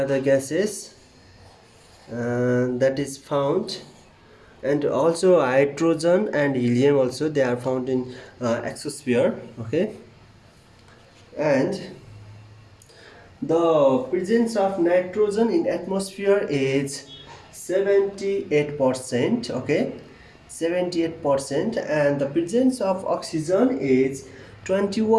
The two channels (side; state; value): both; identical; correlation 1.00